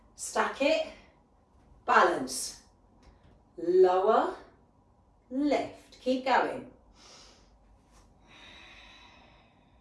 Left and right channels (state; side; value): identical; both; correlation 1.00